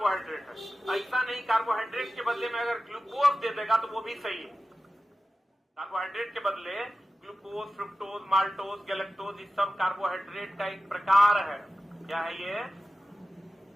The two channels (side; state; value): both; normal; correlation 0.94